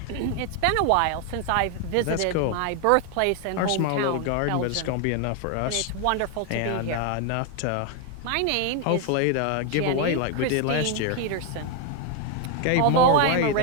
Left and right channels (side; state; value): both; different; correlation 0.01